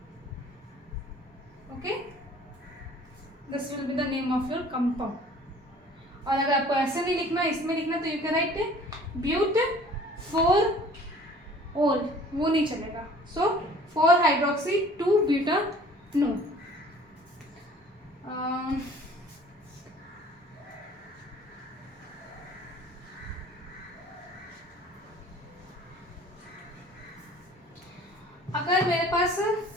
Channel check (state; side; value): normal; both; correlation 0.50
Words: Okay, this will be the name of your compound. और अगर आपको ऐसे नहीं लिखना, इसमें लिखना, तो यू कैन राइट ब्यूट 4 ओल, वो नहीं चलेगा। सो 4 हाइड्रोक्सी 2 ब्यूटानोन। अगर मेरे पास